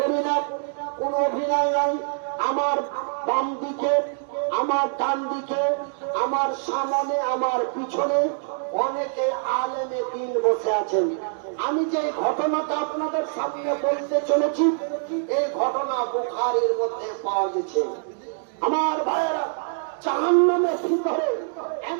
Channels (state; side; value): silent; left; digital silence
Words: না, কোন অভিনয় নাই। আমার বাম দিকে, আমার ডান দিকে, আমার সামনে, আমার পিছনে অনেকে আলেমে দ্বীন বসে আছেন। আমি যে ঘটনাটা আপনাদের সামনে বলতে চলেছি, এই ঘটনা বুখারীর মধ্যে পাওয়া গেছে। আমার ভাইয়েরা, জাহান্নামের ভিতরে